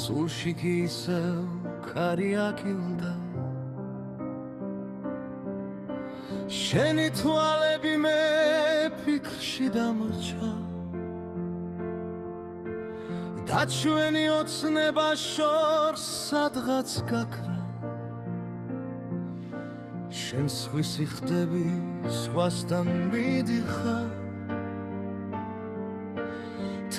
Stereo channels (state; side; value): identical; both; correlation 1.00